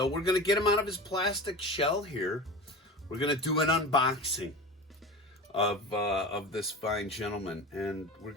we're going to get him out of his plastic shell here. We're going to do an unboxing of this fine gentleman, and we're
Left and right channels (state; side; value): normal; both; correlation 0.31